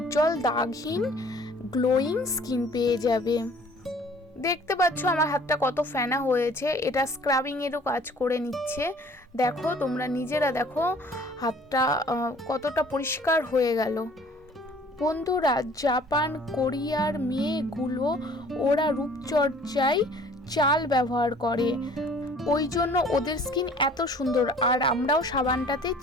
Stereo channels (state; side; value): normal; both; correlation 0.52